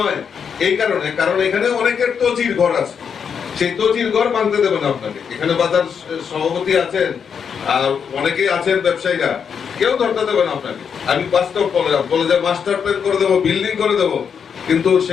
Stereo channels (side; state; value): right; quieter; 7.0 dB